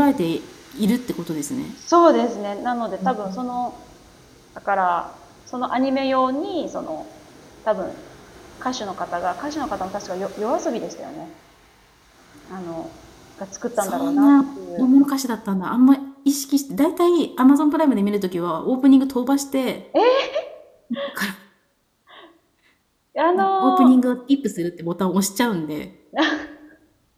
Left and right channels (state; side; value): identical; both; correlation 1.00